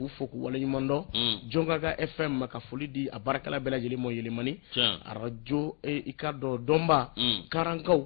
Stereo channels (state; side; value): quieter; right; 34.8 dB